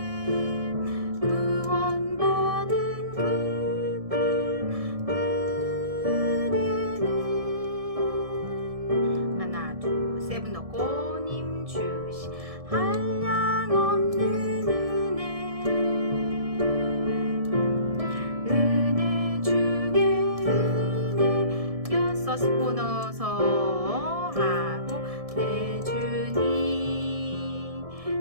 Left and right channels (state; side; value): late; left; 1.7 ms